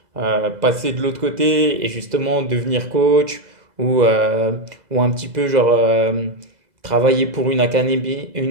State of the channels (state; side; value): late; left; 2.0 ms